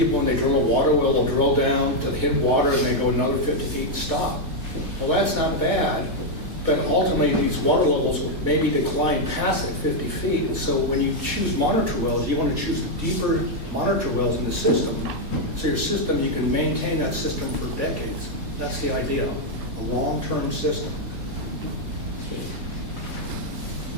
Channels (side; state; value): left; late; 4.1 ms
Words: when they drill a water well, they'll drill down to hit water and they go another 50 feet and stop. Well, that's not bad. But ultimately, these water levels will maybe decline past that 50 feet. So when you choose monitor wells, you want to choose the deeper monitor wells in the system. So your system, you can maintain that system for decades. That's the idea, a long-term system.